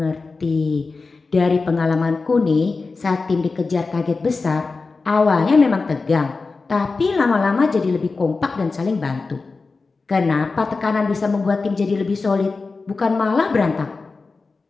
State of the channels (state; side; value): quieter; right; 4.1 dB